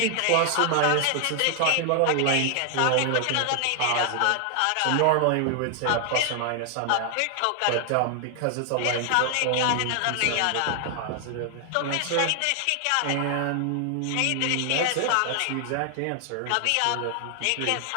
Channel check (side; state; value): both; different; correlation 0.00